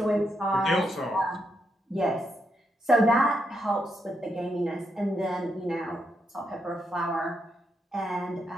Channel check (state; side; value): normal; both; correlation 0.81